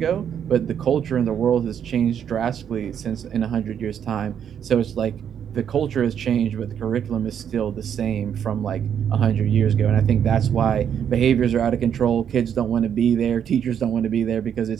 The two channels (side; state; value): left; quieter; 8.7 dB